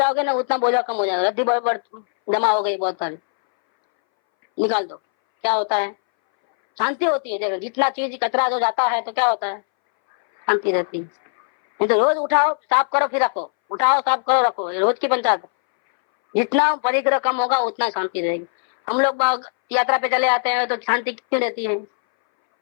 ना उतना बोझा कम हो जाएगा। रद्दी जमा हो गई बहुत सारी, निकाल दो, क्या होता है, शांति होती है। देखो जितना चीज कचरा जो जाता है तो क्या होता है, शांति रहती है। नहीं तो रोज उठाओ साफ करो फिर रखो, उठाओ साफ करो रखो, रोज की पंचायत। जितना परिग्रह कम होगा उतना शांति रहेगी। हम लोग यात्रा पे चले आते हैं तो शांति क्यों रहती है,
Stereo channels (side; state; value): right; silent; 63 dB below the other